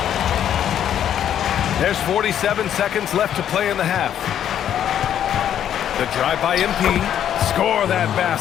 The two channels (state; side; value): quieter; right; 10.0 dB